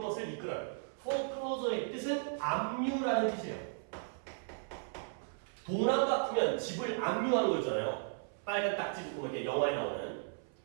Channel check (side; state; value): left; silent; 54 dB below the other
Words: 이끌어요. foreclosure의 뜻은 압류라는 뜻이에요. 도난 같으면 집을 압류하는 거 있잖아요. 빨간 딱지 붙고 이렇게 영화에 나오는.